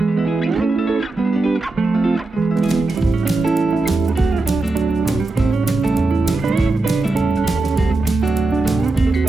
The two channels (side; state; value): left; quieter; 3.1 dB